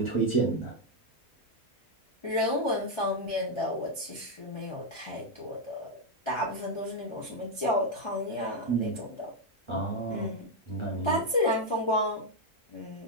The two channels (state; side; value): normal; both; correlation 0.01